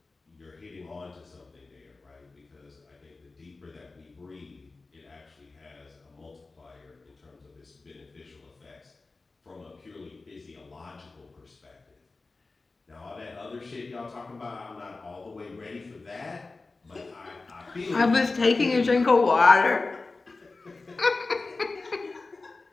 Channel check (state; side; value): quieter; right; 3.6 dB